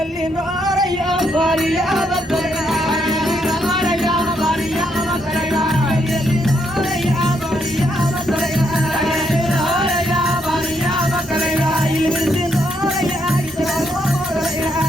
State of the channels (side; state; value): both; normal; correlation 0.76